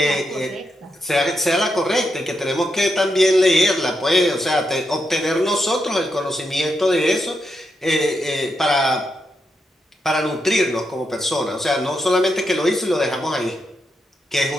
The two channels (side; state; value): both; normal; correlation 0.84